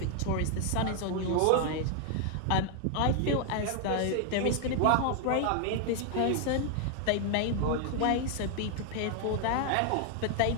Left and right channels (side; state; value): both; different; correlation 0.00